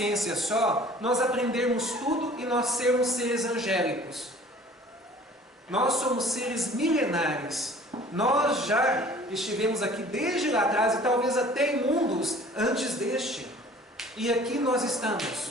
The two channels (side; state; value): both; normal; correlation 0.49